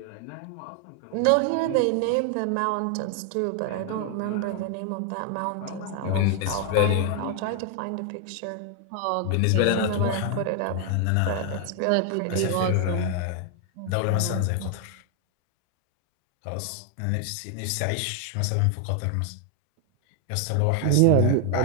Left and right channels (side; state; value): both; different; correlation 0.00